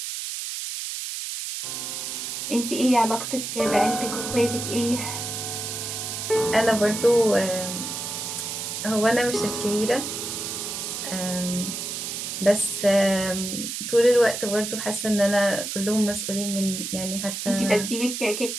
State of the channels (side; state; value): right; noise; hiss, 5 dB below the sound